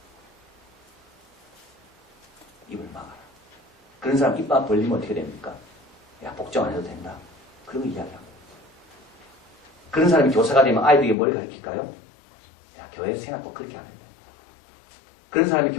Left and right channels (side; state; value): right; drops out; at 11.2 s